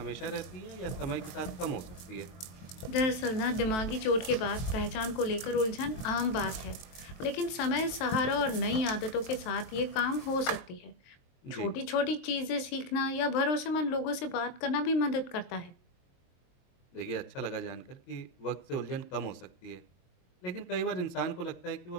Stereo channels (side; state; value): right; late; 23 ms